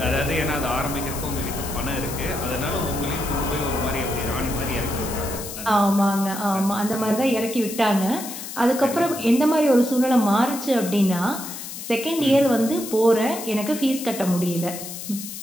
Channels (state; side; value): noise; left; hiss, 9 dB below the sound